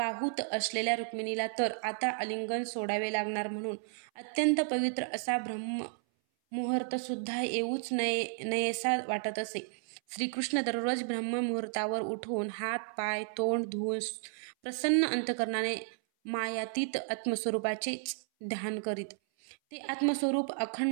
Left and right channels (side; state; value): left; silent; 56 dB below the other